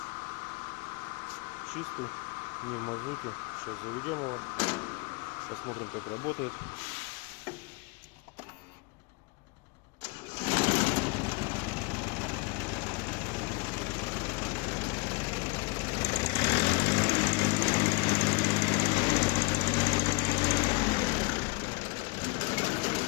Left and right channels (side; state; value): right; quieter; 26.1 dB